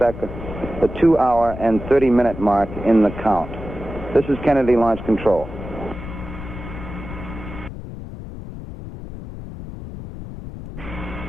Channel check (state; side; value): noise; left; rumble, 11 dB below the sound